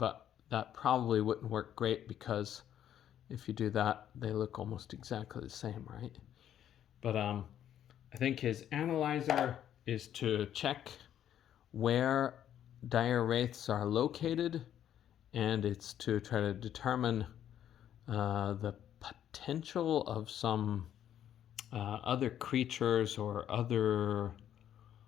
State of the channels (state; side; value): quieter; right; 10.5 dB